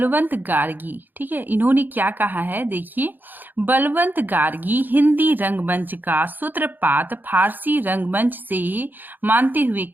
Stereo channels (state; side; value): late; left; 0.089 ms